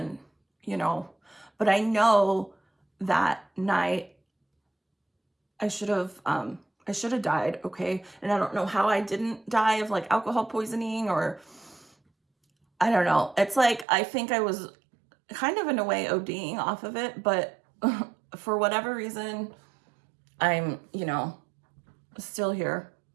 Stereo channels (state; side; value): drops out; left; at 13.9 s